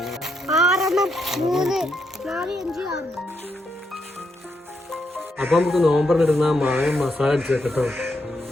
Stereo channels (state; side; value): normal; both; correlation 0.80